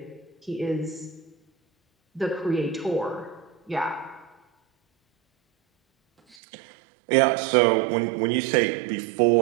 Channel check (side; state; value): left; drops out; at 6.4 s